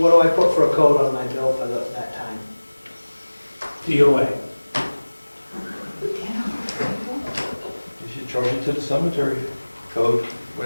do I put for a code on my bill for that time? DOA. You should charge it to the cemetery code,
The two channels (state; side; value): inverted; both; correlation -1.00